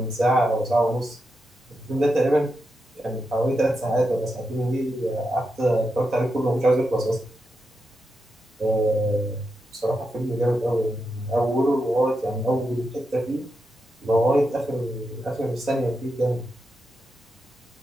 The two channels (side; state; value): both; normal; correlation 0.86